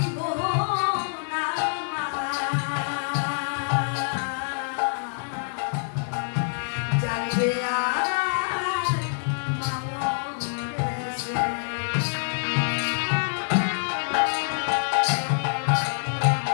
না মা, জানবে আর মা মরেছে।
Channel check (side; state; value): right; silent; digital silence